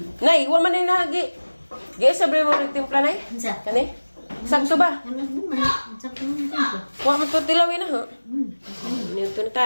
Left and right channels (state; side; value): inverted; both; correlation -1.00